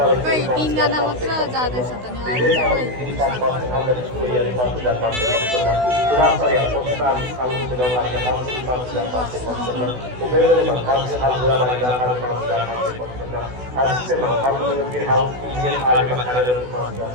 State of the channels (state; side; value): late; left; 16 ms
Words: खै 3 जना मात्र जाँदैछ त नि, अरू